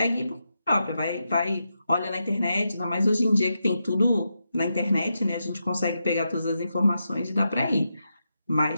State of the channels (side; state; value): both; inverted; correlation -0.86